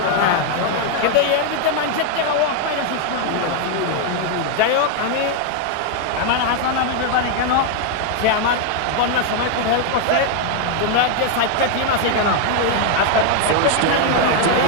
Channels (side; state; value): both; different; correlation 0.00